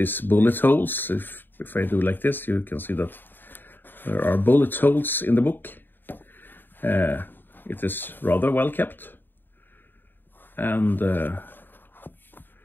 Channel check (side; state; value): right; late; 0.094 ms